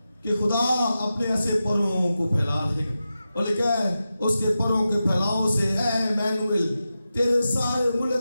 کہ خدا اپنے ایسے پروں کو پھیلا دے گا، اور لکھا ہے اس کے پروں کے پھیلاؤ سے اے ایمانویل تیرے سارے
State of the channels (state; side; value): inverted; both; correlation -0.92